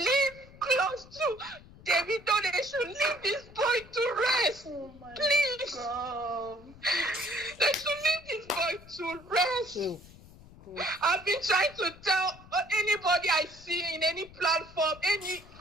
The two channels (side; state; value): left; noise; rumble, 21 dB below the sound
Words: close to I've been trying to tell anybody I see in any platform, any